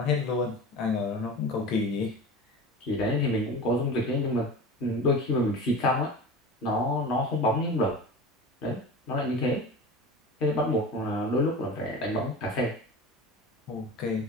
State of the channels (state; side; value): normal; both; correlation 0.33